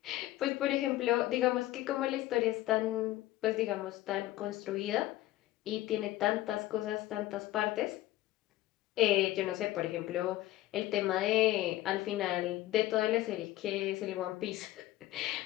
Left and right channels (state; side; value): quieter; right; 15.7 dB